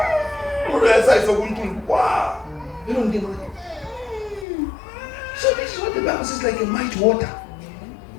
Or else I saw one. Wow. You don't give money. So this is what the Bible says, like a mighty water.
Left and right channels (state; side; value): drops out; right; at 4.5 s